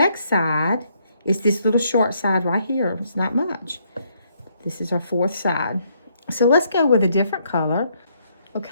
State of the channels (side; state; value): both; inverted; correlation -0.72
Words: side is this little short side right here. It's not much. This is our 4th side. So let's go with a different color.